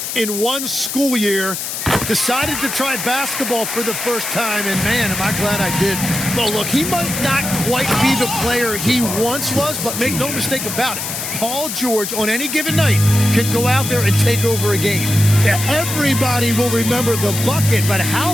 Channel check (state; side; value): noise; left; hiss, 5 dB below the sound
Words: in one school year. Decided to try basketball for the first time, and man, am I glad I did. Well, look, he might not quite be the player he once was, but make no mistake about it. Paul George, on any given night, can go out there and take over a game. Yeah, everybody will remember the bucket, but how